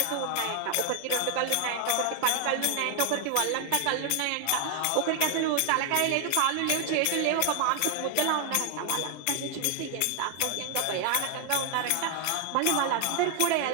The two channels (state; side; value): different; both; correlation 0.00